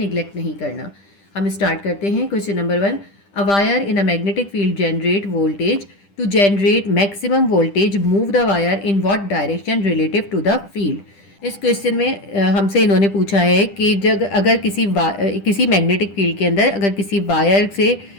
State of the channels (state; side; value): late; right; 10 ms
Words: नहीं करना। हम स्टार्ट करते हैं। Question number 1, a wire in a magnetic field generate voltage to generate maximum voltage, move the wire in what direction relative to the field. इस क्वेश्चन में हमसे इन्होंने पूछा है कि जब अगर किसी मैग्नेटिक फील्ड के अंदर अगर किसी वायर से